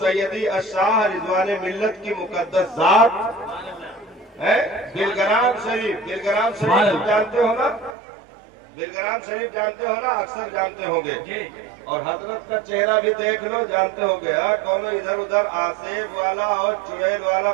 سیدی الشاہ رضوان ملت کی مقدس ذات ہے۔ بلگرام شریف جانتے ہو نا؟ بلگرام شریف جانتے ہو نا؟ اکثر جانتے ہوں گے، اور حضرت کا چہرہ بھی دیکھ لو، جانتے ہو گے۔ کونو ادھر ادھر آسیب والا اور چڑیل والا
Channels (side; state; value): left; drops out; at 8.0 s